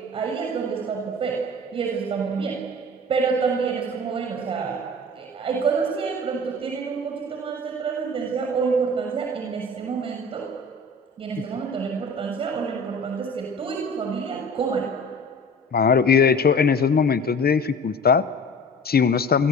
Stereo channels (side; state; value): both; normal; correlation 0.41